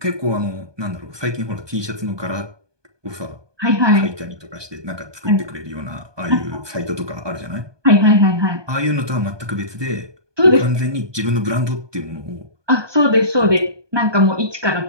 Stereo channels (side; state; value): left; late; 1.2 ms